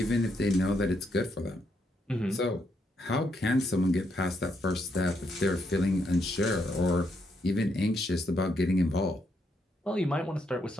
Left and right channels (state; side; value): normal; both; correlation 0.77